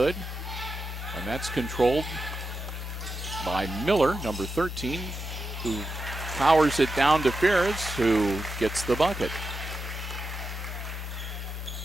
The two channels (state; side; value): normal; both; correlation 0.88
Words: And that's controlled by Miller, number 13, who powers it down to Ferris, who gets the bucket.